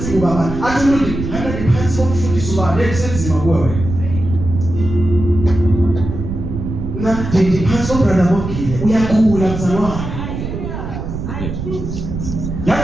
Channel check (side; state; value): right; noise; rumble, 6 dB below the sound